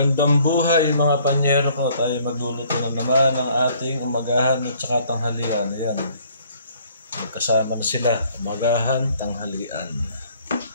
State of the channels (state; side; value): inverted; both; correlation -0.60